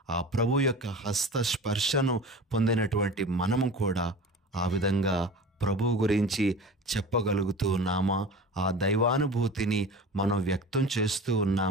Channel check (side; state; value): both; normal; correlation 0.35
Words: ఆ ప్రభు యొక్క హస్తస్పర్శను పొందినటువంటి మనము కూడా ఆ విధంగా ప్రభువు గురించి చెప్పగలుగుతూ ఉన్నామా? ఆ దైవానుభూతిని మనం వ్యక్తం చేస్తూ